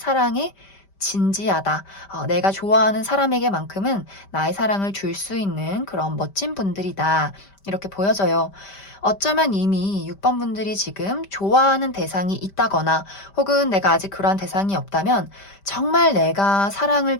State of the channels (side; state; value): right; late; 5.1 ms